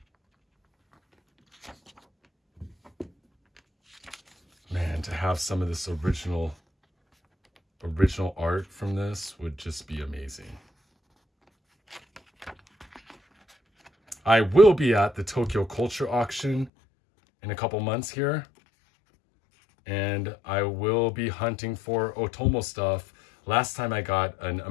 Man, to have some of this original art from this would just be amazing. I will be at the Tokyo Culture Auction in a couple months here, and I will be hunting for Otomo stuff. Last time I got an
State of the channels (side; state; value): right; drops out; at 16.7 s